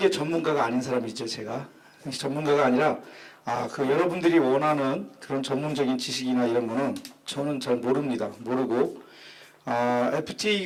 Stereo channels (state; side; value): identical; both; correlation 1.00